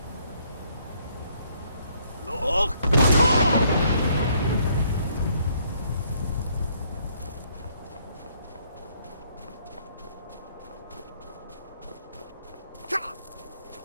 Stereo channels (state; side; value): inverted; both; correlation -0.67